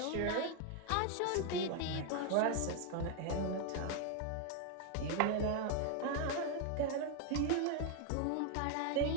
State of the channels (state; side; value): different; both; correlation 0.00